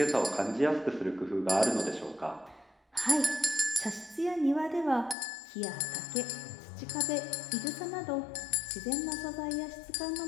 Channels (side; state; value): right; drops out; at 5.2 s